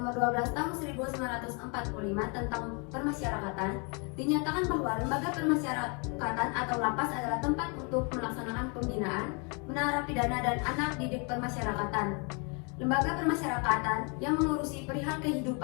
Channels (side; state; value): right; quieter; 34.5 dB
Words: 12 Tahun 1945 tentang permasyarakatan, dinyatakan bahwa lembaga permasyarakatan atau lapas adalah tempat untuk melaksanakan pembinaan, menarapidana dan anak didik permasyarakatan. Lembaga permasyarakatan yang mengurusi perihal